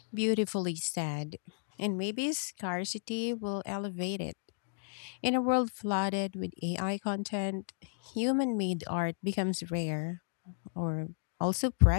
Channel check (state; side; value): silent; right; digital silence